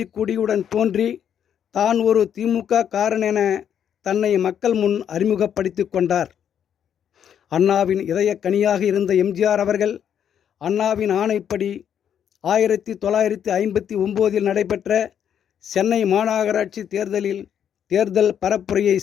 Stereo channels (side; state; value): right; quieter; 8.9 dB